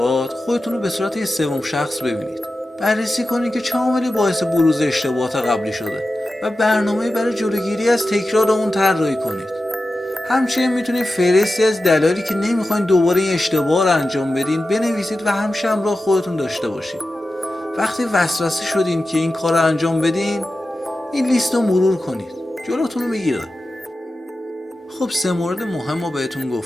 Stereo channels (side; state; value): both; normal; correlation 0.93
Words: خودتون رو به صورت یه سوم شخص ببینید. بررسی کنید که چه عاملی باعث بروز اشتباهات قبلی شده و برنامه برای جلوگیری از تکرار اون طراحی کنید. همچنین میتونید فهرستی از دلایلی که نمیخواین دوباره این اشتباه رو انجام بدین بنویسید و همیشه همراه خودتون داشته باشید. وقتی وسوسه شدین که این کار رو انجام بدین، این لیست رو مرور کنید، جلوتون رو میگیره. خب 3 مورد مهم رو بهتون